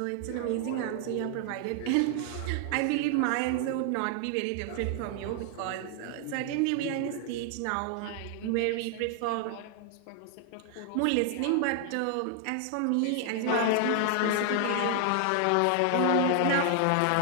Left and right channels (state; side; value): different; both; correlation 0.00